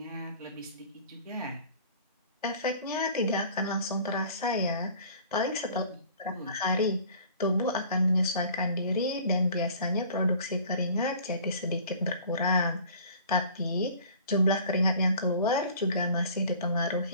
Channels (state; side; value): inverted; both; correlation -0.48